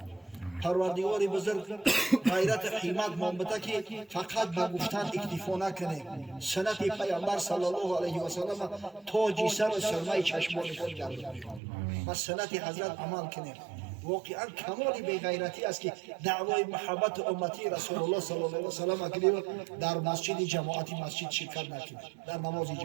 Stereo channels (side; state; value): left; drops out; at 11.6 s